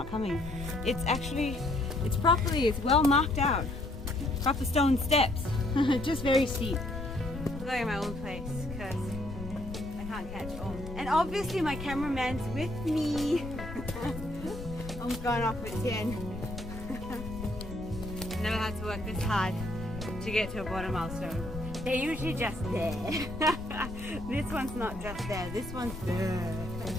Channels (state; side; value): noise; left; rumble, 10 dB below the sound